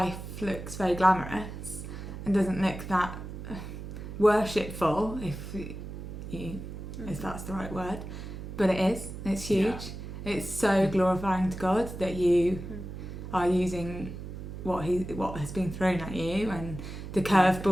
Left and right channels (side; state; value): right; noise; hum, 9 dB below the sound